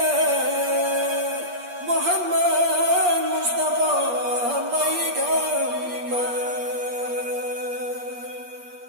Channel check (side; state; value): left; late; 8.5 ms